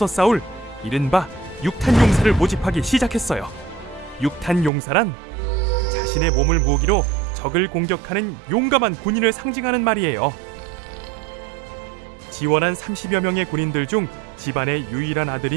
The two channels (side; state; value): left; drops out; at 4.7 s